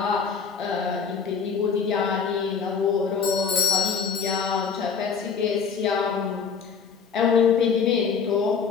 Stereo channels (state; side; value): quieter; right; 6.0 dB